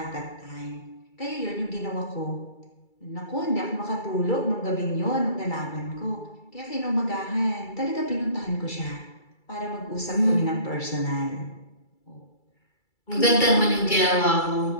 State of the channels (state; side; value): late; right; 2.3 ms